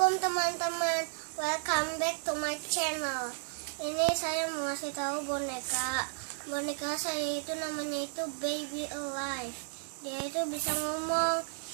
teman-teman, welcome back to my channel. Ini saya mau kasih tahu boneka saya itu namanya itu Baby Alive. Dia itu bisa ngomong,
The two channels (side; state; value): left; silent; 56 dB below the other